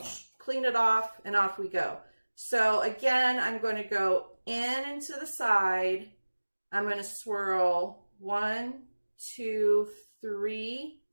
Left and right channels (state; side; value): inverted; both; correlation -1.00